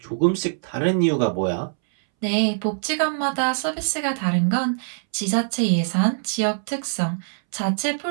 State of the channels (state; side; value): silent; left; 63 dB below the other